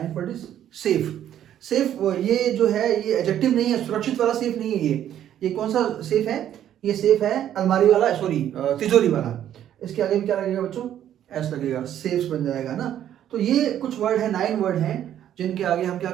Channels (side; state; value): left; quieter; 10.9 dB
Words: word is safe. Safe ये जो है ये एडजेक्टिव नहीं है, सुरक्षित वाला सेफ नहीं है ये कौन सा सेफ है, ये सेफ है अलमारी वाला, सॉरी तिजोरी वाला। इसके आगे भी क्या लगेगा बच्चों, एस लगेगा, सेफ्स बन जाएगा ना। तो ये कुछ वर्ड है, 9 वर्ड हैं जिनके आगे हम क्या